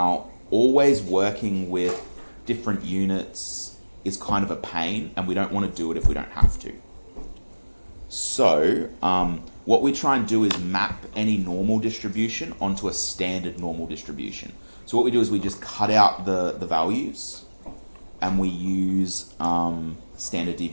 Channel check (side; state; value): both; inverted; correlation -1.00